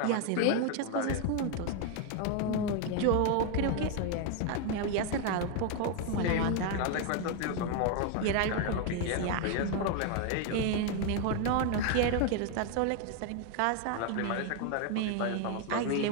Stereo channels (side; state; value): both; different; correlation 0.01